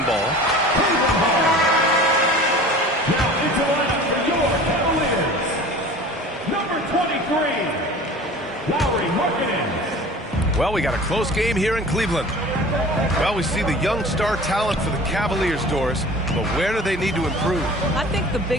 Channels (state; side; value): normal; both; correlation 0.41